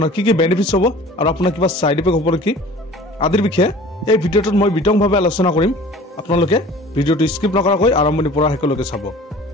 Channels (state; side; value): normal; both; correlation 0.45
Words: কি বেনিফিটছ হ'ব আৰু আপোনাৰ কিবা ছাইড ইফেক্ট হ'ব নেকি আদিৰ বিষয়ে এই ভিডিঅ'টোত মই বিতংভাৱে আলোচনা কৰিম। আপোনালোকে ভিডিঅ'টো স্কিপ নকৰাকৈ আৰম্ভণিৰ পৰা শেষলৈকে চাব।